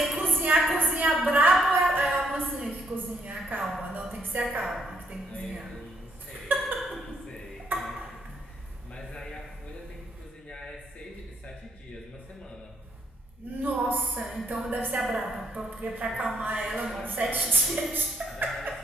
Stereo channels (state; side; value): normal; both; correlation 0.72